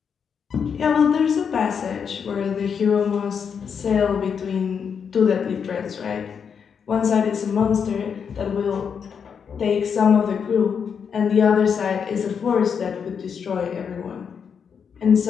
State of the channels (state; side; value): quieter; right; 6.8 dB